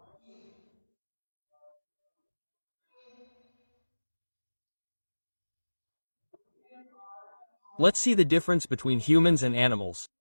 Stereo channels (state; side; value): inverted; both; correlation -1.00